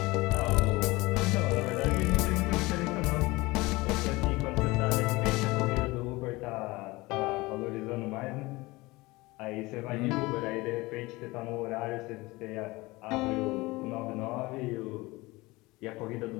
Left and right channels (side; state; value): right; quieter; 21.8 dB